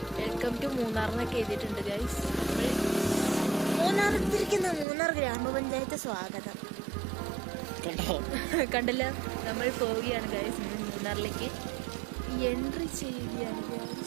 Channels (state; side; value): drops out; left; at 4.9 s